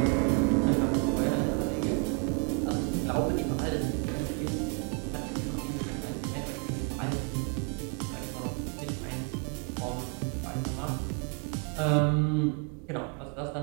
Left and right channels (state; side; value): quieter; left; 36.0 dB